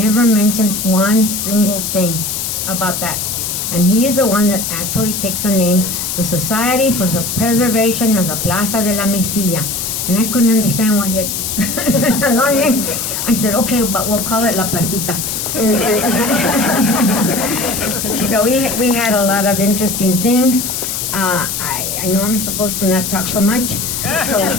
mentioned one single thing about that. And he is the one that actually picked the name, the Society for the Preservation of the Plaza de la Mesilla. And I couldn't understand why he had such a long name. I said, okay, but we'll call it La Placita. So we had a lot of interesting things. I know I'm supposed to not talk so much, so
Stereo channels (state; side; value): noise; left; hiss, 3 dB below the sound